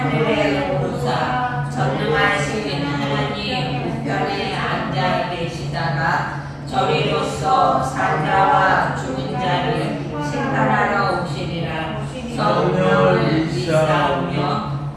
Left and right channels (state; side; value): identical; both; correlation 1.00